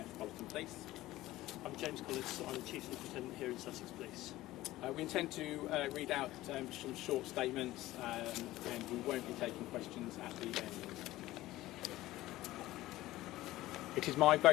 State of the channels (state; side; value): quieter; right; 16.6 dB